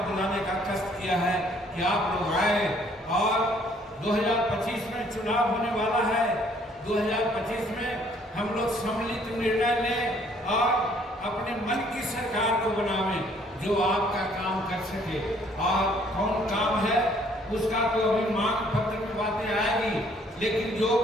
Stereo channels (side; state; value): both; normal; correlation 0.62